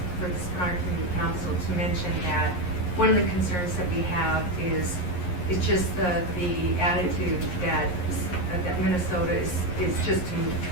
for the Spinard Community Council to mention that one of the concerns that we have is just the attitude that Minnesota is just to move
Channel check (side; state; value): right; late; 11 ms